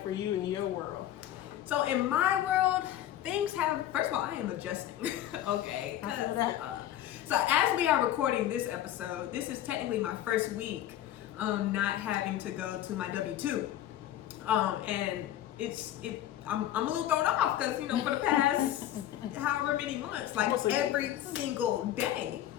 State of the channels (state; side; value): quieter; right; 12.3 dB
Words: for you in your world? So in my world, things have, first of all, I am adjusting. Okay. So as we are recording this episode, this is technically my first week not having to go to my W-2. And I'm a little thrown off because, you know, for the past however many months, like every single day,